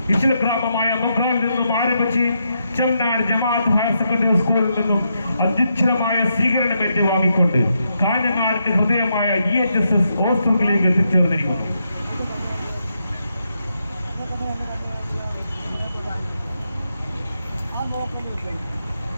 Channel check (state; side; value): inverted; both; correlation -0.82